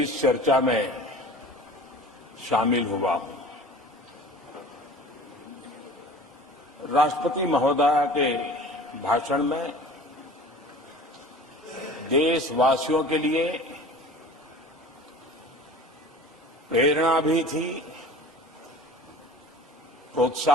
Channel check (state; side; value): normal; both; correlation 0.42